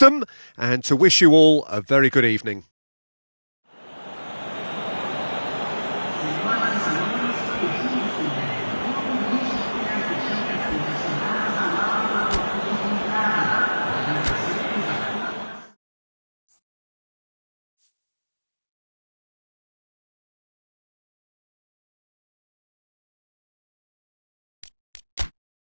and to wish you all a very good evening.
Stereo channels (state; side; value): inverted; both; correlation -1.00